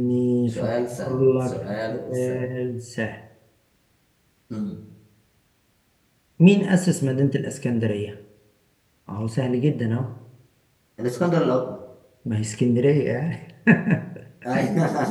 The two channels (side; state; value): both; identical; correlation 1.00